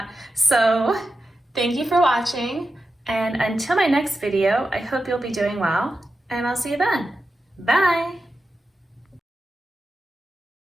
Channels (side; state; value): both; normal; correlation 0.91